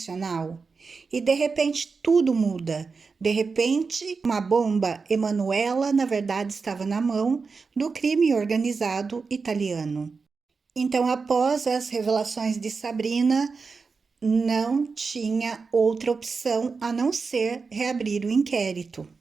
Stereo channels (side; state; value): left; quieter; 4.7 dB